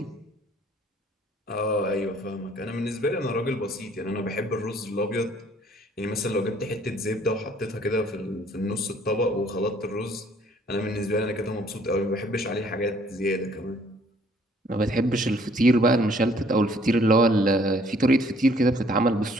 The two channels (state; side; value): normal; both; correlation 0.60